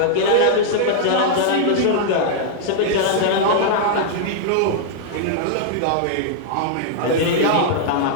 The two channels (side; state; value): both; different; correlation -0.01